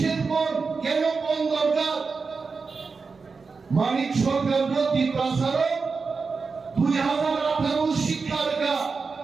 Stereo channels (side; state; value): left; quieter; 4.7 dB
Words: বন কেন বন দরকার মানিক সরকার প্রতি প্রসারক 2018 শিক্ষা রেখা